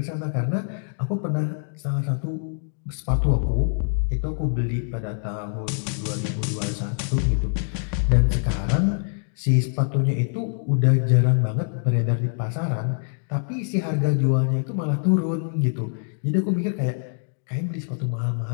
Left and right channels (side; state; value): right; silent; digital silence